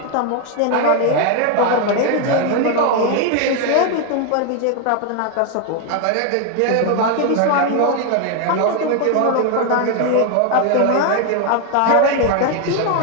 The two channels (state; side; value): different; both; correlation 0.01